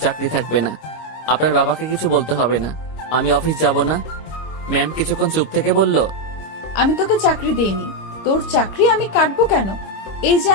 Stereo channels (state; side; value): late; right; 26 ms